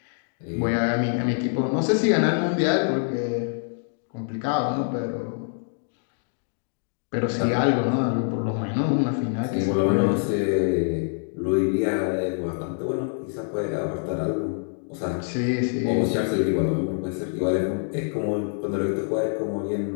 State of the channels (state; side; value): silent; right; digital silence